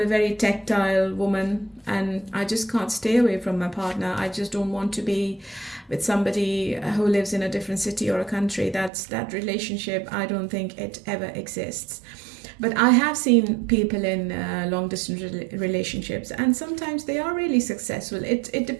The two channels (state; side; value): drops out; left; at 8.9 s